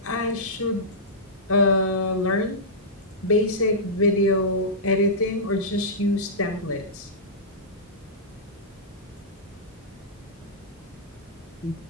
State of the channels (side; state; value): both; normal; correlation -0.14